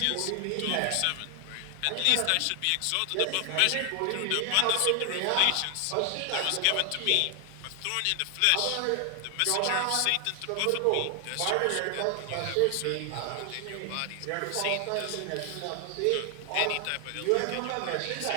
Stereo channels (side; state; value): both; different; correlation 0.00